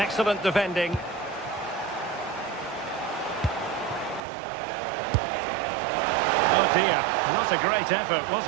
defending. Oh dear, not a great effort, was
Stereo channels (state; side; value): drops out; left; at 4.2 s